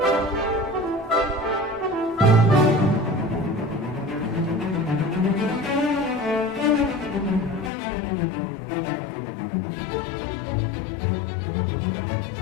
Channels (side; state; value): right; drops out; at 7.7 s